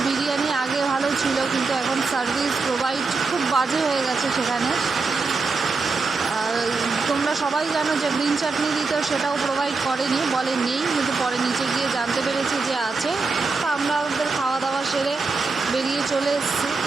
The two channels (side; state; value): left; quieter; 4.2 dB